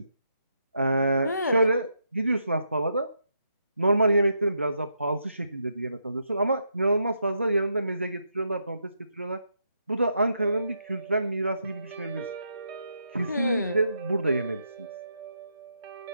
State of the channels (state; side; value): inverted; both; correlation -0.80